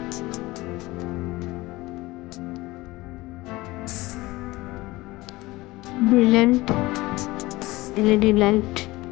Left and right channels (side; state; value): right; quieter; 20.1 dB